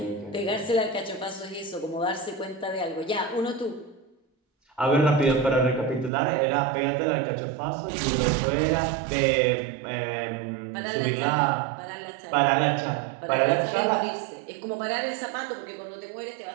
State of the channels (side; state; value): left; drops out; at 6.1 s